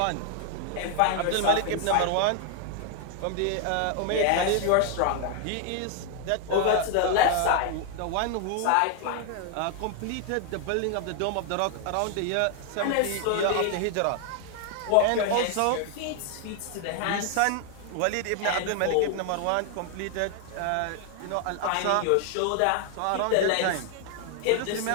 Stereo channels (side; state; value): both; different; correlation 0.00